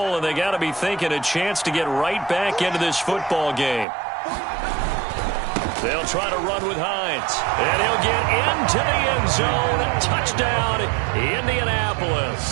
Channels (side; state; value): left; drops out; at 3.9 s